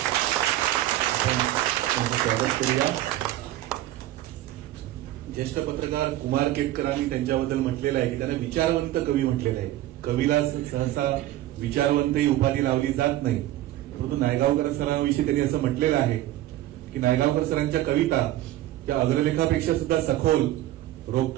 आपण त्यांचं स्वागत करूया. ज्येष्ठ पत्रकार कुमार केतकरांनी त्यांच्याबद्दल म्हटलेलं आहे की त्यांना विचारवंत कवी म्हटलेलं आहे. कवीला सहसा विचारवंत ही उपाधी लावली जात नाही, परंतु नायगावकर सरांविषयी त्यांनी असं म्हटलेलं आहे की नायगावकर सरांच्या कविता त्या अग्रलेखापेक्षा सुद्धा सखोल,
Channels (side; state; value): left; quieter; 14.6 dB